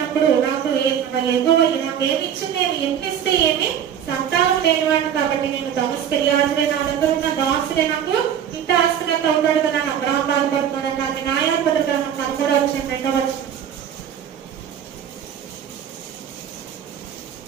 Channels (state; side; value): quieter; left; 9.1 dB